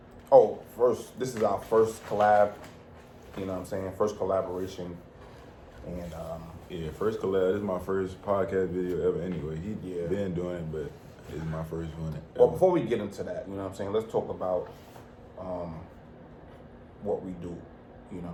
this is our first collab, you know what I'm saying? First collaboration. And, yeah, first collab. This is my first podcast video ever anyway. He been doing it, but it's my first one ever. Well, before we get into that, you know what I'm saying? Let's talk about what we do. You know what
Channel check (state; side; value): identical; both; correlation 1.00